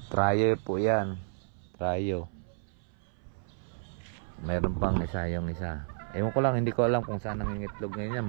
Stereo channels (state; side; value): silent; left; 57 dB below the other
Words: Trayo po yan. Trayo. Mayroon pang isa yung isa. Ewan ko lang, hindi ko alam kung saan nangingitlog ngayon